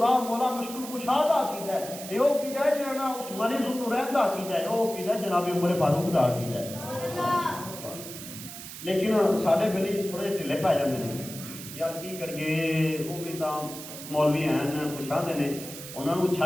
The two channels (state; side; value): noise; right; hiss, 11 dB below the sound